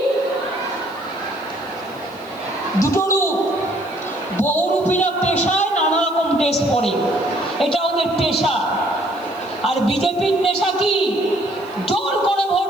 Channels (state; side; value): noise; left; hiss, 26 dB below the sound